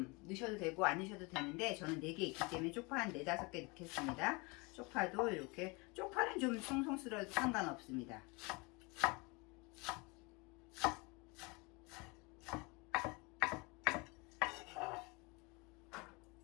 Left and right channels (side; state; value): right; quieter; 27.7 dB